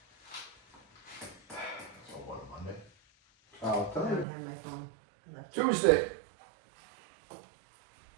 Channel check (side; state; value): left; drops out; at 4.2 s